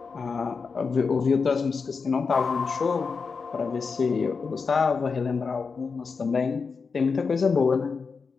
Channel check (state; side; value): quieter; right; 5.1 dB